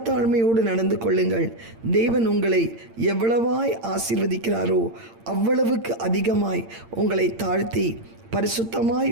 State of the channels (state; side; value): late; left; 8.8 ms